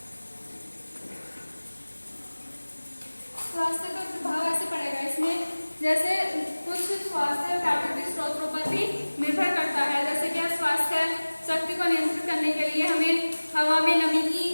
स्वास्थ्य पर प्रभाव ऐसे पड़ेगा इसमें, जैसे कुछ स्वास्थ्य प्राकृतिक स्रोतों पर भी निर्भर करता है। जैसे कि स्वास्थ्य शक्ति को नियंत्रित करने के लिए हमें हवा में नमी की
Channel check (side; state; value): both; inverted; correlation -1.00